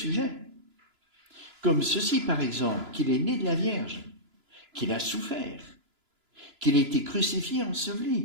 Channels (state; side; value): late; left; 2.9 ms